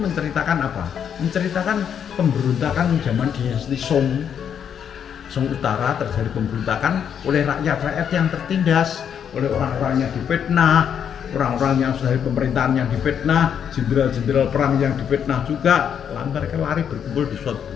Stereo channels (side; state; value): right; quieter; 8.2 dB